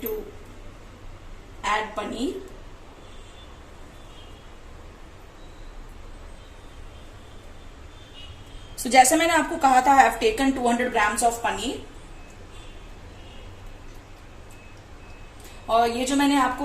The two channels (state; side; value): identical; both; correlation 1.00